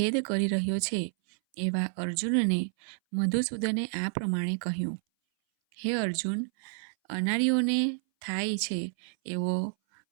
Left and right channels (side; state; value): left; silent; 58 dB below the other